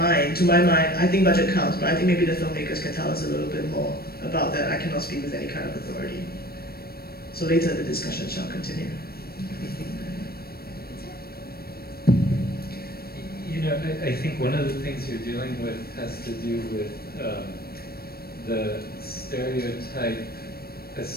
to my mind, I think budget counts, but I think maybe the filmmakers can tell us a little bit more about that. I cannot speak with any kind of authority. So later the discussion shall continue. You know, I think one of the things you're dealing with has to do with the stereotype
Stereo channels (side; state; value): right; late; 0.44 ms